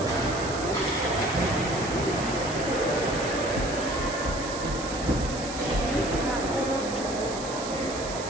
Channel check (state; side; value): noise; right; hiss, 10 dB below the sound